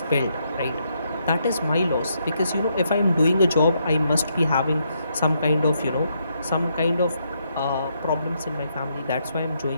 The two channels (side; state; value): both; inverted; correlation -0.77